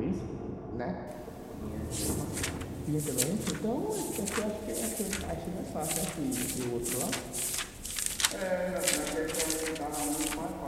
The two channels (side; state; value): both; identical; correlation 1.00